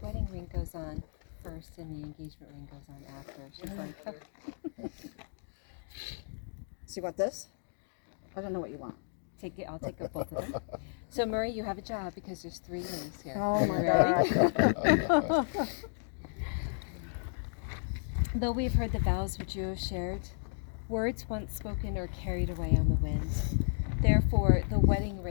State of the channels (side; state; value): right; silent; digital silence